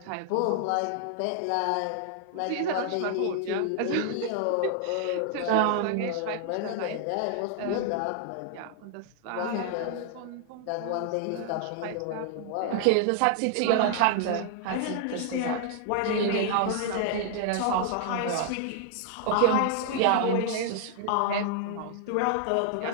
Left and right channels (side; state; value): both; different; correlation 0.00